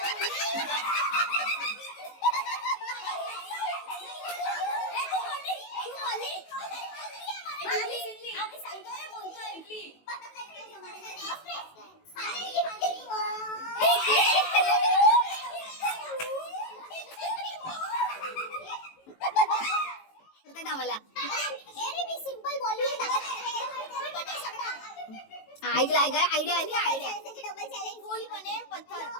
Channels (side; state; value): right; late; 18 ms